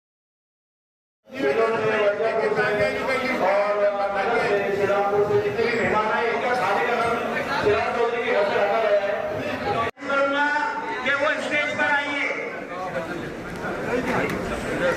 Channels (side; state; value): both; identical; correlation 1.00